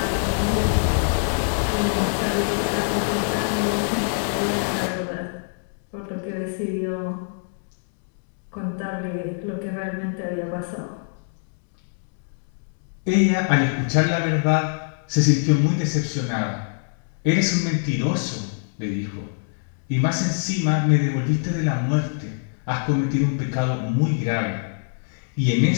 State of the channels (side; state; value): right; silent; digital silence